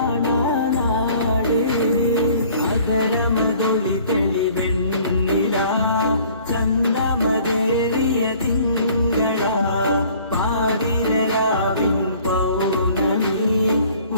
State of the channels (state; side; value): inverted; both; correlation -0.54